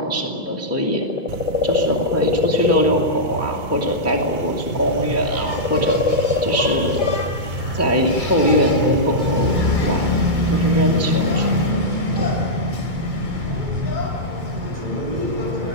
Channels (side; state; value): left; late; 2.2 ms